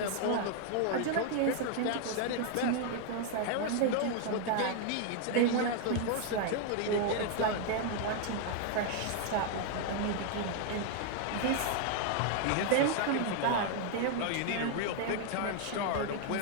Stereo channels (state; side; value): different; both; correlation 0.00